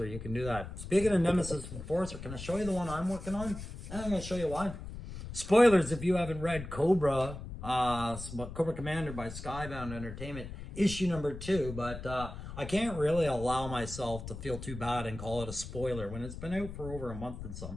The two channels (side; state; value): left; noise; rumble, 10 dB below the sound